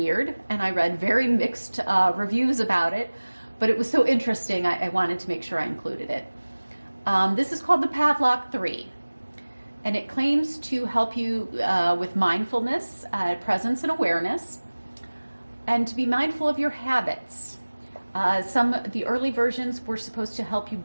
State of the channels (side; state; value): both; inverted; correlation -1.00